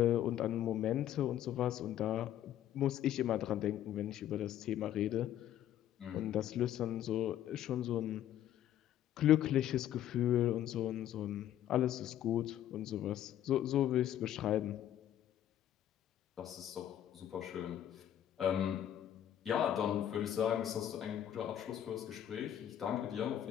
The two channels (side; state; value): right; quieter; 11.4 dB